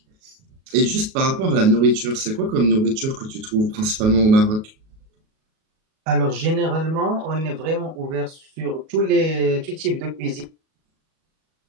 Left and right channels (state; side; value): late; left; 37 ms